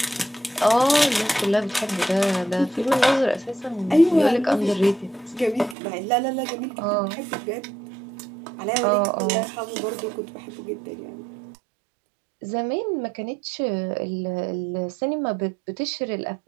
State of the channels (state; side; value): drops out; left; at 5.8 s